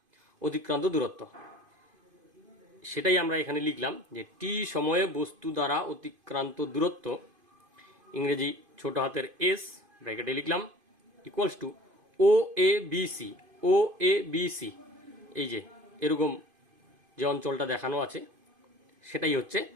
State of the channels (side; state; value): left; late; 2.5 ms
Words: অতিক্রান্ত দূরত্ব। সেটাই আমরা এখানে লিখলাম যে টি সময়ে বস্তু দ্বারা অতিক্রান্ত দূরত্ব, ইংরেজি ছোট হাতের এস ব্র্যাকেটে লিখলাম, equals to O A B C. O A B C, এই যে এরকম যে অঞ্চলটা দেখানো আছে সেটাই হচ্ছে